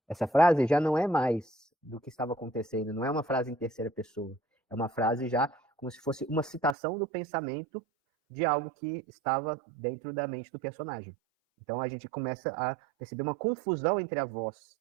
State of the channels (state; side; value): drops out; left; at 6.8 s